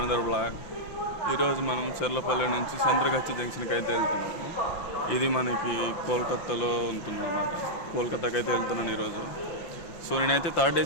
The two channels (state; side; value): late; right; 5.8 ms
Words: blog. ఈరోజు మనం చెర్లపల్లి నుంచి సంద్రగచ్చి జంక్షన్కి అయితే వెళ్తున్నాము. ఇది మనకి కోల్కతాలో ఉంటుందన్నమాట. కోల్కతాకి అయితే వెళ్తున్నాను ఈరోజు. సో నేనైతే థర్డ్